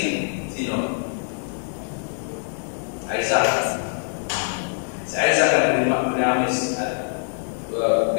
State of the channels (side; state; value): right; silent; digital silence